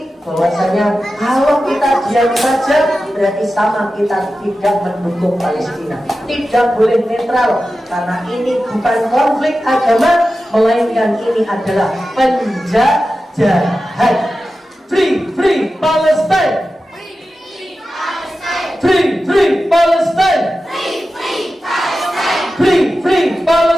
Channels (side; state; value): both; normal; correlation 0.93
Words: bahwasanya kalau kita diam saja berarti sama kita tidak mendukung Palestina. Tidak boleh netral, karena ini bukan konflik agama, melainkan ini adalah penjajahan. Free Palestine. Free Palestine. Free